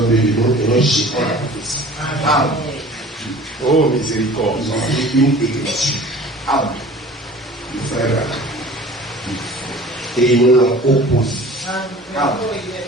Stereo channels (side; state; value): both; normal; correlation 0.44